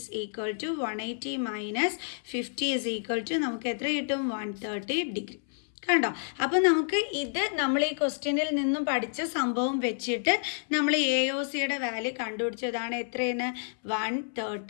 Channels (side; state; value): right; silent; 58 dB below the other